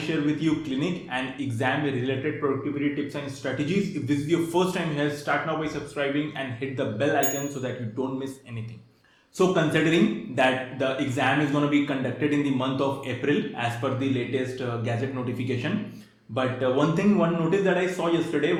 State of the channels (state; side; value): identical; both; correlation 1.00